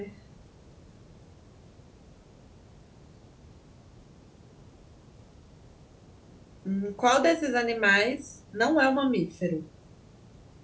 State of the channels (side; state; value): both; identical; correlation 1.00